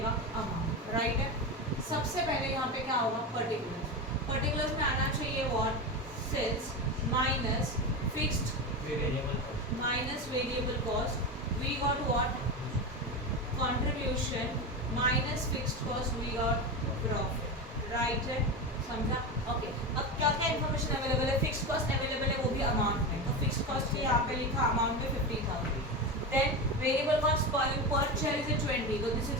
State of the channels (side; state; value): both; normal; correlation 0.20